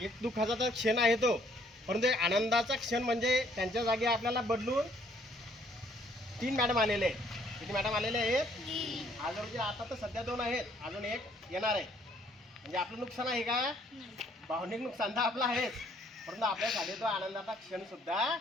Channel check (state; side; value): normal; both; correlation 0.64